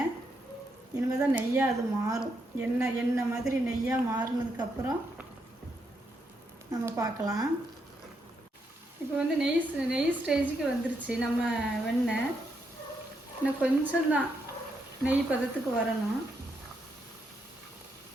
இனிமேல் தான் நெய்யாக அது மாறும். எண்ணெய் மாதிரி நெய்யாக மாறினதுக்கப்புறம் நம்ம பார்க்கலாம். இப்போ வந்து நெய் ஸ்டேஜுக்கு வந்துருச்சு நம்ம வெண்ணெய். இன்னும் கொஞ்சம்தான் நெய் பதத்துக்கு வரணும்.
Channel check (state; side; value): normal; both; correlation 0.79